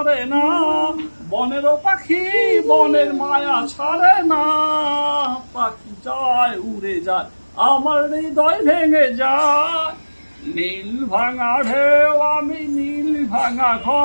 না, বনেরও পাখি বনের মায়া ছাড়ে না। পাখি যায় উড়ে যায়, আমার হৃদয় ভেঙে যায়। নীল ভাঙা ঢেউ আমি নীল ভাঙা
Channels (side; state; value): both; inverted; correlation -1.00